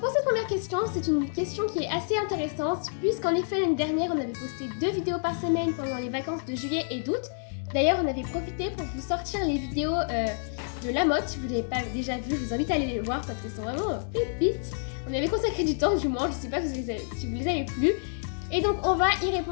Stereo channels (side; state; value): right; silent; digital silence